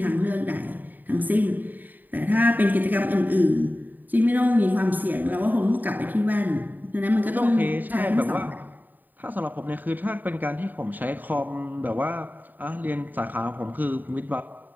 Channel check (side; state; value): left; late; 0.088 ms